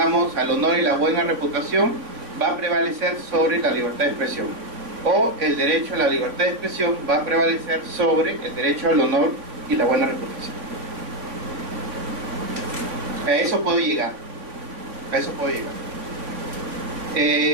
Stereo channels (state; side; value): late; left; 3.5 ms